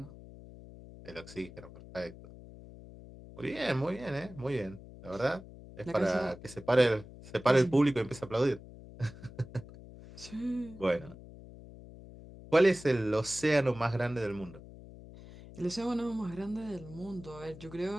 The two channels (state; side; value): noise; left; hum, 17 dB below the sound